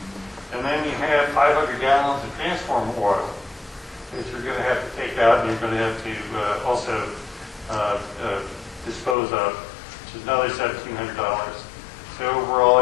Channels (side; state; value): right; drops out; at 9.2 s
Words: And then you have 500 gallons of transformer oil that you're going to have to take out, and you're going to have to also dispose of, which is another $1,700. So overall,